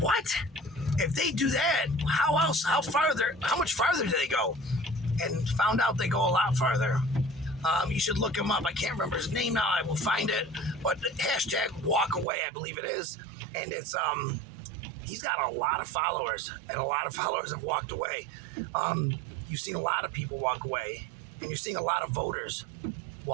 If they do that, how much farther do they go? And found out they go a lot farther. You should look him up. I can't remember his name now. I will find it. But #walkaway, I believe it is. And it's he's got a lot of followers, and a lot of followers have walked away. You've seen a lot of people walk away, and you're seeing a lot of voters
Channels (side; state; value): left; drops out; at 12.2 s